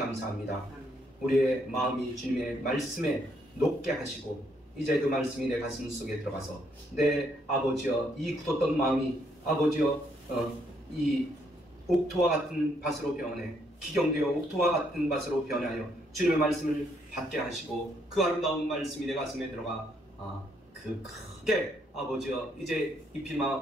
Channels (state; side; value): normal; both; correlation 0.72